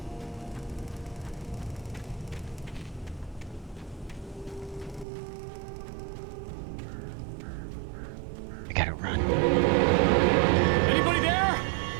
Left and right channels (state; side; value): drops out; left; at 5.1 s